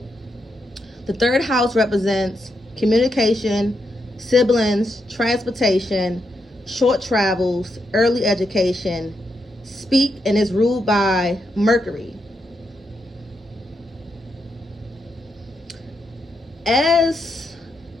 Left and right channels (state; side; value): normal; both; correlation 0.82